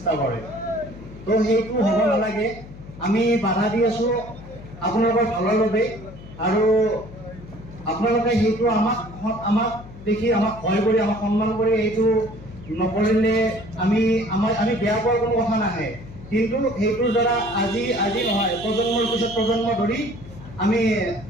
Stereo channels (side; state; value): left; noise; hum, 17 dB below the sound